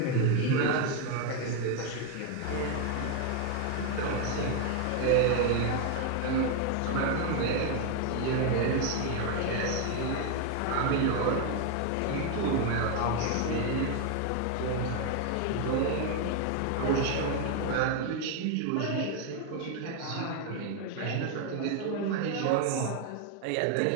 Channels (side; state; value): both; different; correlation 0.01